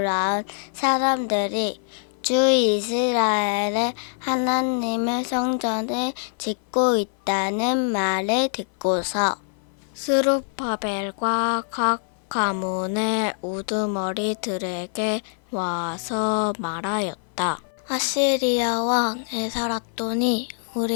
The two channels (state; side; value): silent; right; 56 dB below the other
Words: 사람들이 주 이스라엘의 하나님의 성전을 짓고 있다는 말을 듣고서 스룹바벨과 각 가문의 우두머리들에게 와서 말하였다. 아시리아 왕 에사라돈이